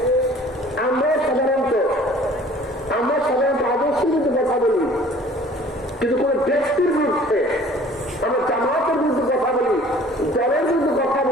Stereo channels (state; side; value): normal; both; correlation 0.50